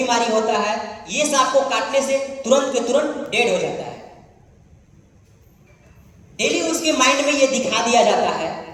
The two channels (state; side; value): identical; both; correlation 1.00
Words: होता है, ये सांप को काटने से तुरंत के तुरंत डेड हो जाता है। डेली उसके माइंड में ये दिखा दिया जाता है।